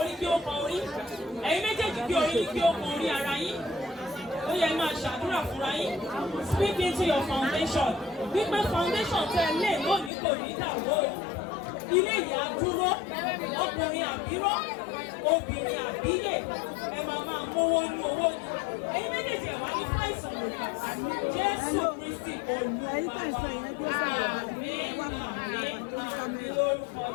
kí ó kan orí. Ẹ̀yin méjèèjì kí orí kí ó kan orí ara yín. Ó yẹ máa ṣàdúrà fúnra yín. Speak into your foundation. Wípé foundation tẹ lé lónìí kò ní dàwó. Ilé ìyá dúró. Ọkùnrin àbíró. Obìnrin àbíyè. Ẹ máa mówó ní owó ni. Ẹ̀yin méjèèjì ẹ̀ wá ní fáìsàn lòdì. Jésù Kristi Olúwa. Àmín. Àmín. Àmín lórúkọ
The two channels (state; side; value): drops out; right; at 10.1 s